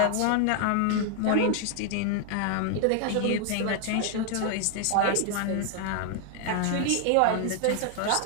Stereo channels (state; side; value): different; both; correlation 0.00